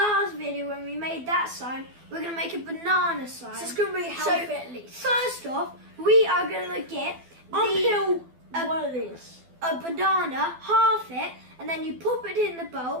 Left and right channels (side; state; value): left; late; 12 ms